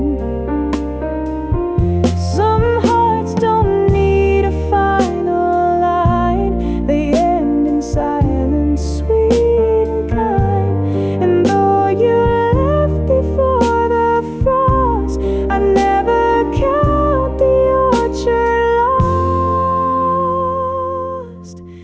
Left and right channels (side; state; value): both; identical; correlation 1.00